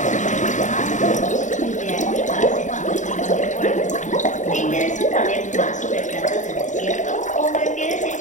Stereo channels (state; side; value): late; right; 0.36 ms